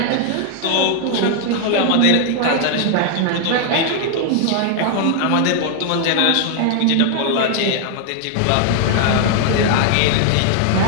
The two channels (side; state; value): both; different; correlation 0.00